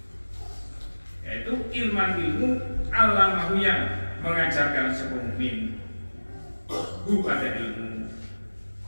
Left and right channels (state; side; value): inverted; both; correlation -1.00